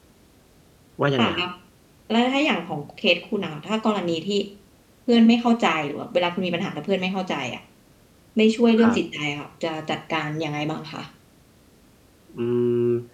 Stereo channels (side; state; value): both; identical; correlation 1.00